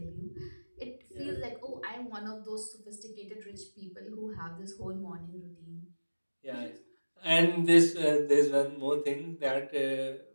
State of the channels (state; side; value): inverted; both; correlation -1.00